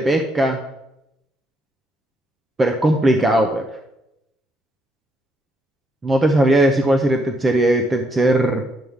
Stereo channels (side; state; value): both; normal; correlation 0.75